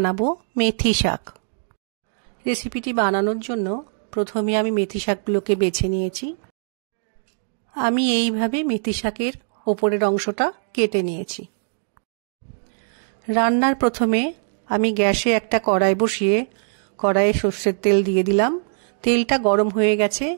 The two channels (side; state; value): left; silent; digital silence